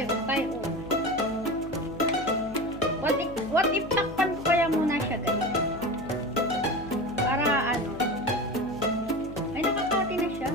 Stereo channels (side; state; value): left; noise; hum, 15 dB below the sound